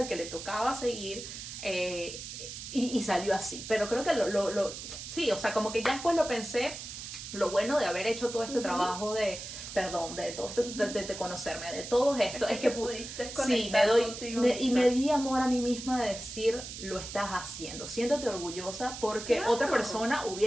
que le tocaba seguir y salió así. Pero creo que sí, o sea, como que ya después lo pensé, lo bueno de haber hecho todo este trabajo de todo esto, de conocerme, de todo esto, es que pudiste sí, conectar contigo y misma. me di amor a mí misma de decir, lo estás haciendo, siéntate orgullosa porque Claro. otra persona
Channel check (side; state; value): right; noise; hiss, 10 dB below the sound